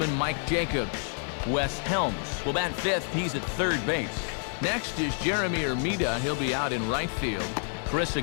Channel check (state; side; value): silent; right; 59 dB below the other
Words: Mike Jacobs. Wes Helms will bat fifth. He's at third base. Next is Jeremy Armida. He'll be out in right field. Chris